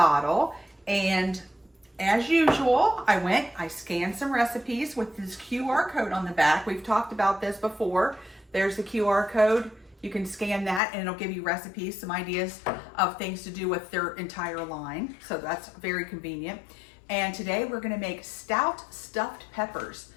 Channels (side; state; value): right; drops out; at 10.8 s